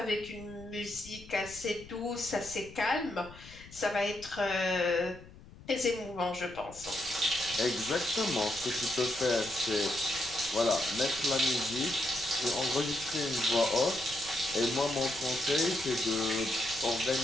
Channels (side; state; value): left; noise; rumble, 19 dB below the sound